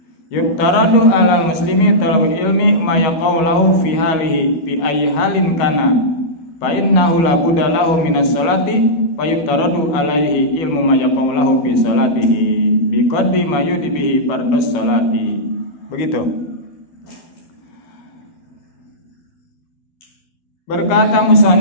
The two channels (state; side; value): late; right; 12 ms